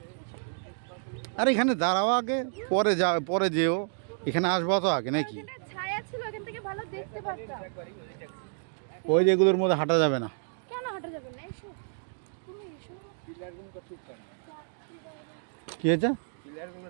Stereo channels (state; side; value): silent; left; digital silence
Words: আরে এখানে দাঁড়াও আগে, পরে যা, পরে যেও। এখানে আসবো তো আগে নাকি? ছায়া ছিল, এখান থেকে ভালো দেখতে পারতাম। ওই যেগুলোর মধ্যে হাঁটা যাবে না। কেন হাঁটা যাবে না? এসো তুমি এসো। কি হয়েছে?